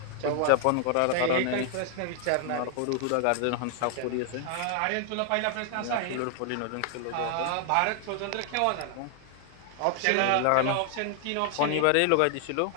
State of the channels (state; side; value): different; both; correlation 0.00